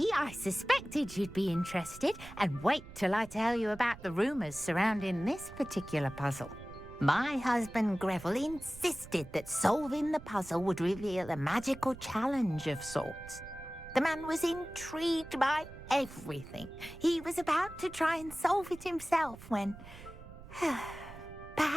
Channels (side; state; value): right; noise; rumble, 16 dB below the sound